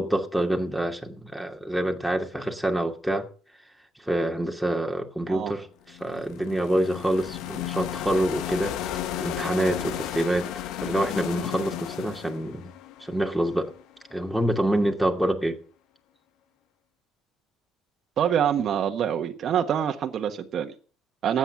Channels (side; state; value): both; normal; correlation 0.81